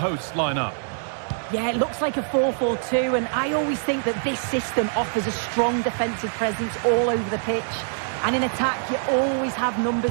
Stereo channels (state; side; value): silent; left; digital silence